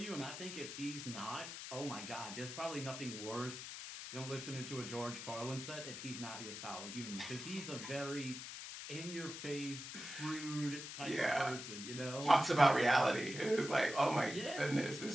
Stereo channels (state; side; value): noise; left; hiss, 8 dB below the sound